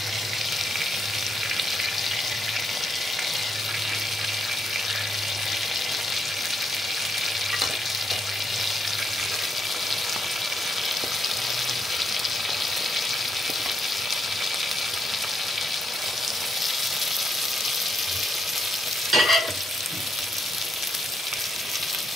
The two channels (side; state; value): both; normal; correlation 0.78